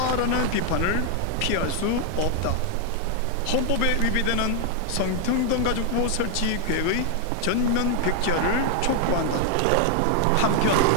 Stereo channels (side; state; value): both; different; correlation 0.00